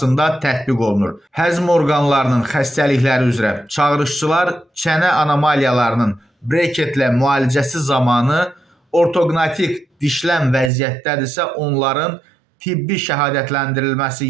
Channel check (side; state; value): left; drops out; at 10.7 s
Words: tətbiq olunur. Həzm orqanlarının xəstəlikləri üzrə çağırışçılar çənə anomaliyalarının breketlə müalicəsi zamanı ortoqnatik dişlən vəziyyətdədirsə, onların tibbi şəhadətləndirilməsi